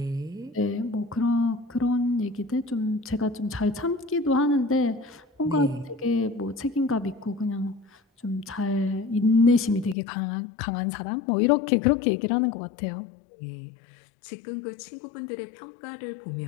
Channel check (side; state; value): right; drops out; at 10.0 s